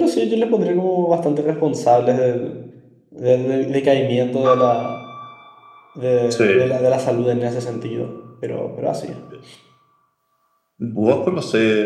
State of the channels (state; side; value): identical; both; correlation 1.00